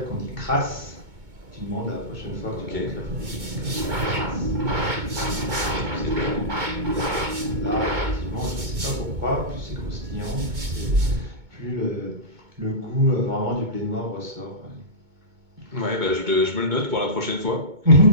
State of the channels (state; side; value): late; left; 2.2 ms